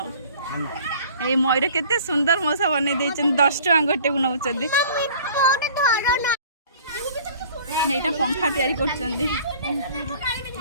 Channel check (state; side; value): inverted; both; correlation -0.49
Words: ये मयूर केते सुंदर मौसा बन 10 टका गोटे को नौ पंखा तैयारी कर